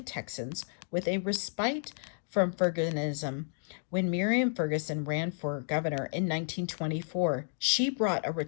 Texans with a respite from Fergusonism. When Miriam Ferguson ran for governor in 1924, she brought a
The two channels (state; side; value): silent; right; digital silence